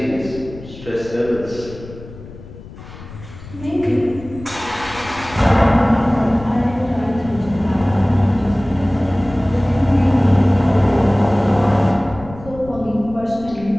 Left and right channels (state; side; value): noise; left; rumble, 16 dB below the sound